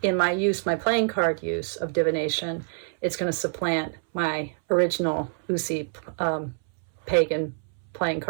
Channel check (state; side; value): silent; left; 61 dB below the other